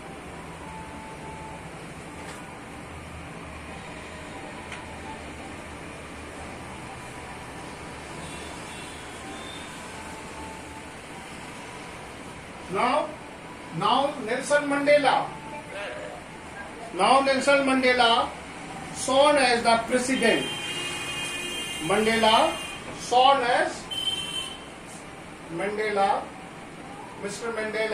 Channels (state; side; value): identical; both; correlation 1.00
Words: Now Nelson Mandela sworn as the president. Mr.